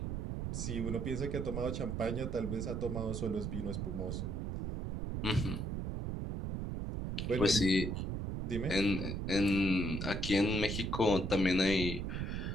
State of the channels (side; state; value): right; noise; rumble, 3 dB below the sound